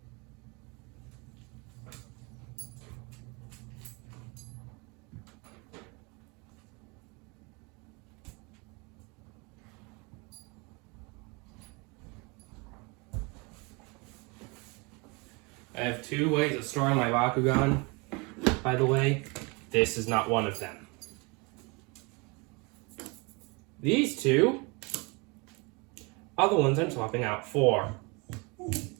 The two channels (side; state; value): left; quieter; 28.7 dB